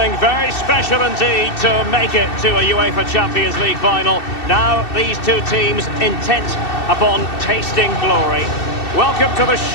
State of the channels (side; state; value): right; late; 2.7 ms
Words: very special indeed to make it to a UEFA Champions League final. Now these two teams intent upon tasting glory. Welcome to the